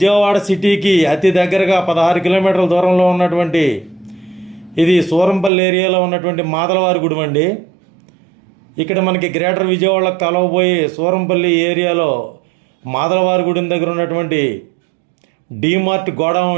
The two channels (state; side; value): drops out; left; at 5.5 s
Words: సిటీకి అతి దగ్గరగా 16 కిలోమీటర్ల దూరంలో ఉన్నటువంటి ఇది సూరంపల్లి ఏరియాలో ఉన్నటువంటి మాదలవారి గుడి అండి. ఇక్కడ మనకి గ్రేటర్ విజయవాడకు కలవబోయి సూరంపల్లి ఏరియాలో మాదలవారి గుడి దగ్గర ఉన్నటువంటి డీమార్ట్ గోడౌన్